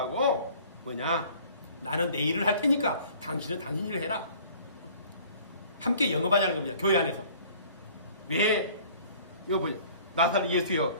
뭐냐? 나는 내 일을 할 테니까 당신은 당신 일을 해라. 함께 영업하자는 겁니다. 교회 안에서. 왜? 이거 보죠. 나사렛 예수여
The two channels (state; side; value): inverted; both; correlation -0.51